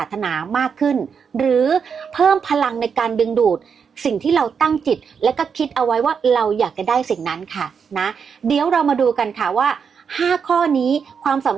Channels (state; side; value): quieter; left; 6.5 dB